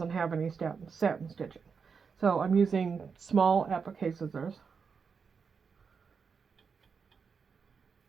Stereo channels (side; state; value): left; quieter; 5.7 dB